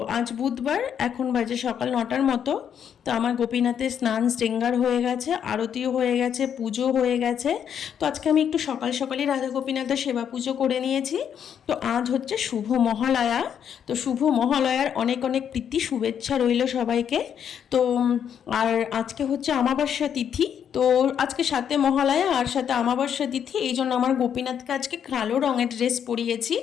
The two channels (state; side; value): quieter; right; 8.5 dB